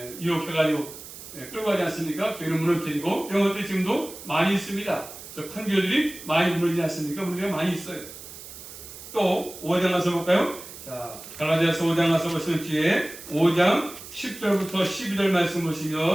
유혹해가지고 끌고 가지 않습니까? 교회를 무너뜨리고 이런 것들이 지금도 많이 있습니다. 큰 교회들이 많이 무너지지 않습니까? 문제가 많이 있어요. 또 5장 가서 볼까요? 자, 갈라디아서 5장 가서 보시면 뒤에 5장 10절부터 12절 말씀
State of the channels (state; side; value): noise; right; hiss, 14 dB below the sound